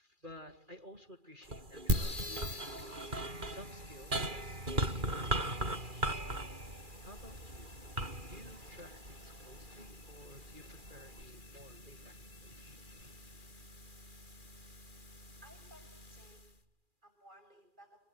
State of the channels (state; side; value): late; left; 2.4 ms